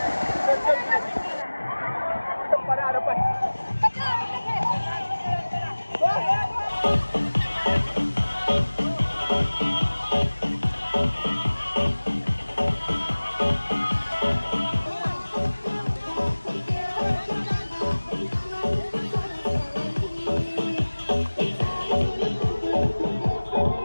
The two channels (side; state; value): both; inverted; correlation -1.00